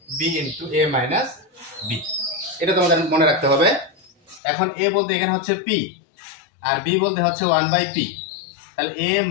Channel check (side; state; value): right; drops out; at 4.4 s